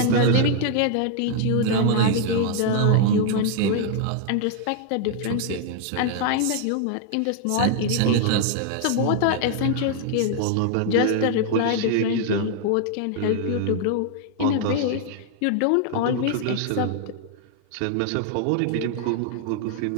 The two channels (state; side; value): different; both; correlation 0.00